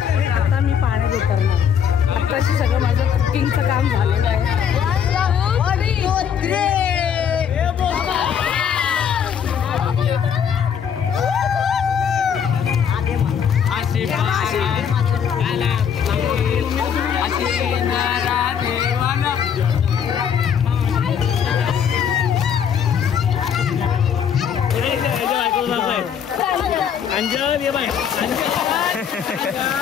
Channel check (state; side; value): quieter; right; 7.9 dB